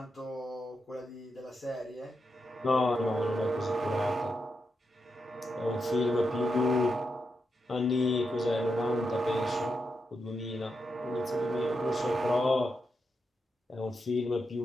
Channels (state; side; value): normal; both; correlation 0.85